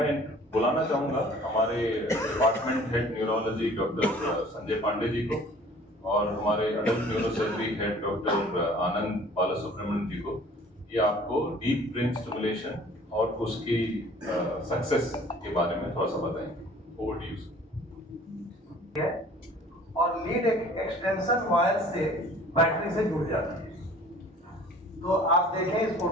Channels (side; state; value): both; normal; correlation 0.50